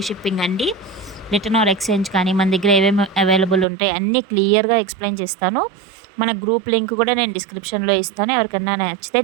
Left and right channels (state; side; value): drops out; left; at 3.7 s